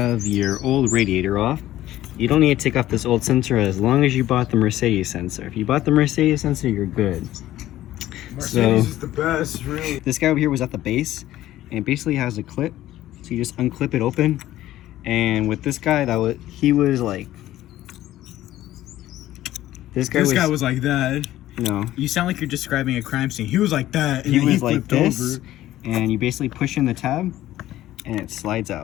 your old radiator off, you don't need to take off this old sensor as long as you bought the Mercedes sensor. If you bought the Mercedes sensor, you're good. Mercedes is the best, really. This guy over here was at the base, and it basically has a clip, so you just unclip it open. And with this guy, he was like, this guy was like that. No, You sound like you're describing a crime scene. He was like that, and he then was like this, over. and you basically push in the tab, and it slides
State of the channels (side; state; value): right; quieter; 14.3 dB